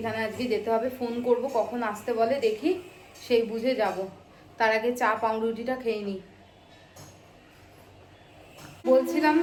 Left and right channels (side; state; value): both; identical; correlation 1.00